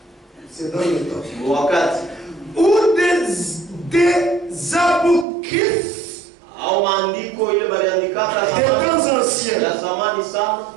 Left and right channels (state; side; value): drops out; left; at 5.2 s